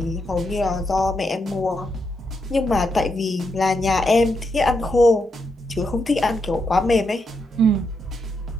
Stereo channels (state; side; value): normal; both; correlation 0.82